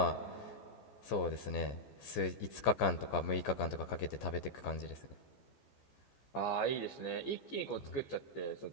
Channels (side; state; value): right; late; 14 ms